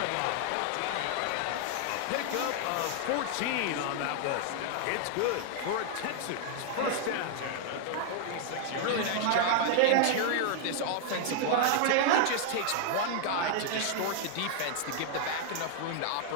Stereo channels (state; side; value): different; both; correlation 0.00